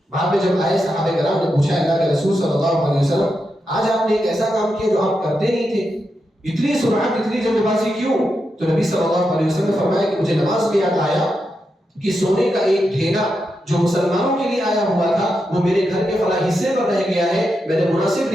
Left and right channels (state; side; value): normal; both; correlation 0.86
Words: بعد میں جب آئے صحابہ کرام نے پوچھا اللہ کے رسول صلی اللہ علیہ وسلم آج آپ نے ایک ایسا کام کیا جو آپ کرتے نہیں تھے، اتنی سرعت اتنی جلد بازی کیوں؟ تو نبی صلی اللہ علیہ وسلم نے فرمایا کہ مجھے نماز میں یاد آیا کہ سونے کا ایک ڈھیلا جو مسلمانوں کے لیے آیا ہوا تھا وہ میرے گھر کے فلاں حصے پر رہ گیا ہے، میں نے مناسب